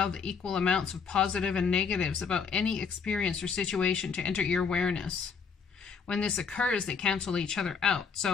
the equal amounts of positive and negatives about any experience or situation to enter your awareness. When this occurs, they cancel each other out.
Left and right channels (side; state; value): right; quieter; 5.9 dB